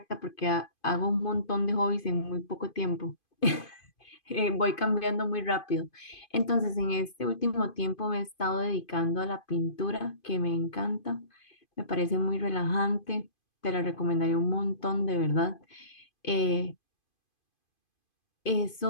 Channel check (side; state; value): right; late; 2.5 ms